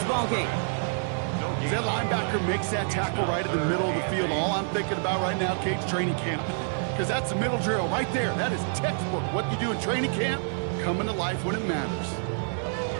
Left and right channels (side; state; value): left; silent; digital silence